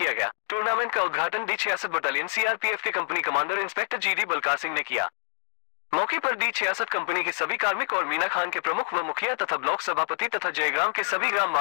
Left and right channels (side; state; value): right; silent; 58 dB below the other